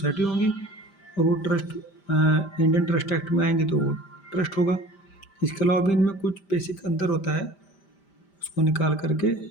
होंगी, और वो ट्रस्ट इंडियन ट्रस्ट एक्ट में आएंगे तो वो ट्रस्ट होगा। इसके अलावा भी इनमें कुछ बेसिक अंतर होता है, उसको निकाल करके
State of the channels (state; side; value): late; right; 5.1 ms